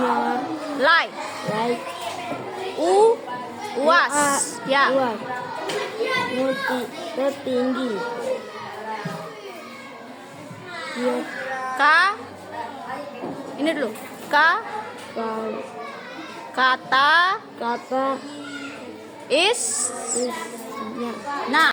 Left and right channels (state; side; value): identical; both; correlation 1.00